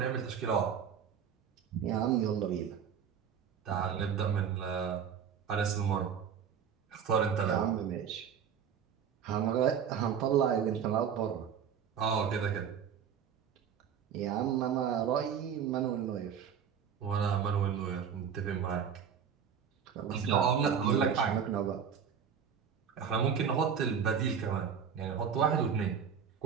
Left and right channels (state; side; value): quieter; left; 7.6 dB